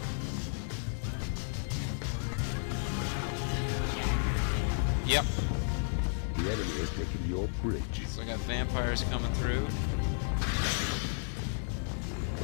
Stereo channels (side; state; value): right; silent; digital silence